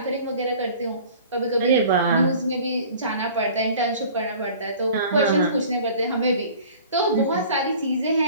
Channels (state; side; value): inverted; both; correlation -0.46